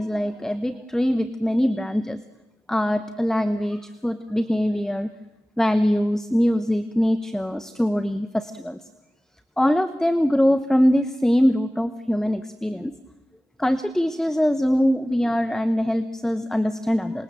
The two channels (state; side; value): normal; both; correlation 0.98